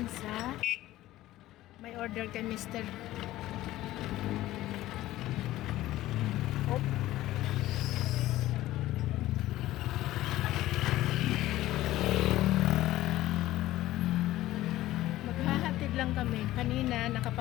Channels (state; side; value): quieter; right; 15.6 dB